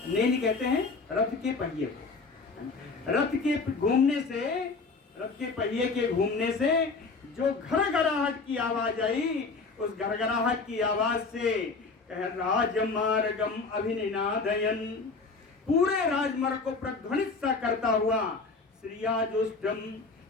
नेमि कहते हैं रथ के पहिए को, रथ के घूमने से, रथ के पहिए के घूमने से जो घरघराहट की आवाज आई, उस घरघराहट की आवाज से राजमार्गम अभिनिनादयन, पूरे राजमार्ग को प्रध्वनित सा करता हुआ, श्रियाजुष्टम,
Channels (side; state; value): right; quieter; 4.2 dB